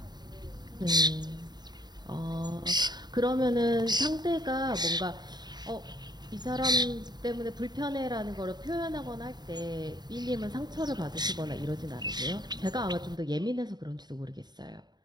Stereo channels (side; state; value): left; late; 0.20 ms